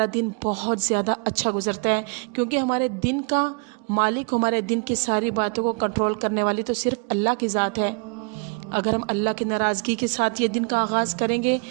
दिन बहुत ज़्यादा अच्छा गुजरता है, क्योंकि हमारे दिन का मालिक, हमारे दिन की सारी बातों को कंट्रोल करने वाली तो सिर्फ अल्लाह की ज़ात है। अगर हम अल्लाह की नाराज़गी के साथ ये दिन का आगाज़ करेंगे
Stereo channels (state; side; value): quieter; left; 36.9 dB